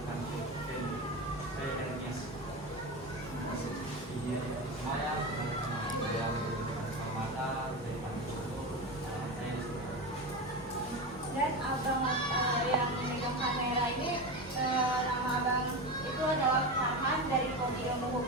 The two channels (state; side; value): normal; both; correlation 0.21